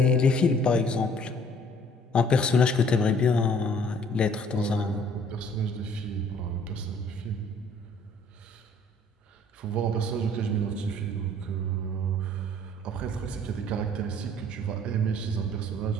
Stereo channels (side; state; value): both; normal; correlation 0.57